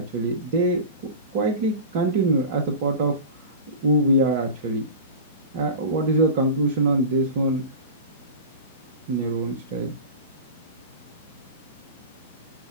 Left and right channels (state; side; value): inverted; both; correlation -0.31